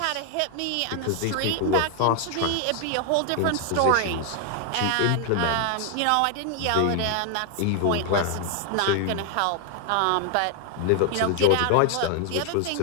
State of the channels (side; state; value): both; different; correlation 0.00